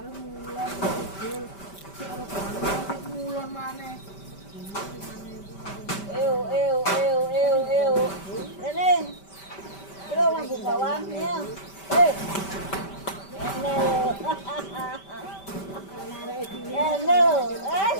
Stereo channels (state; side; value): late; right; 5.1 ms